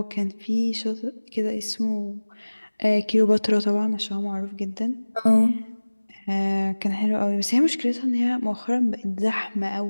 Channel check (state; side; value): inverted; both; correlation -1.00